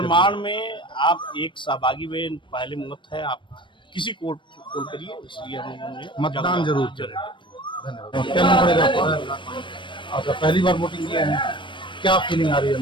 में आप एक सहभागी में पहले मत है, आप किसी को वोट करिए। इसलिए हम लोगों ने मतदान जरूर करें। धन्यवाद। क्या नाम पड़ेगा आपका? आपका पहली बार वोटिंग किया है, क्या फीलिंग आ रही है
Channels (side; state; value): right; late; 0.24 ms